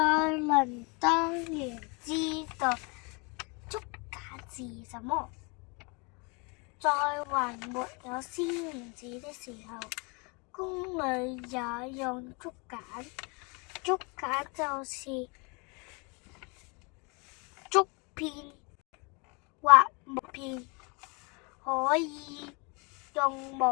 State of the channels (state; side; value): quieter; right; 30.7 dB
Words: 當然知道竹簡是什麼，在還沒有絲棉紙的時候，宮裏也用竹簡。竹簡就是竹片或木片，可以用